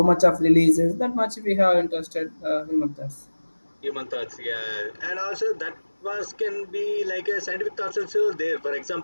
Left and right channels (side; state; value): both; inverted; correlation -1.00